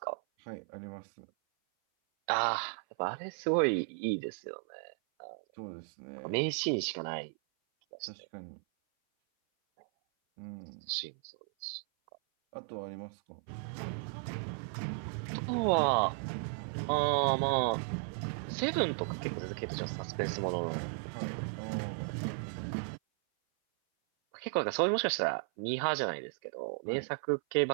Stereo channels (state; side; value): silent; left; 54 dB below the other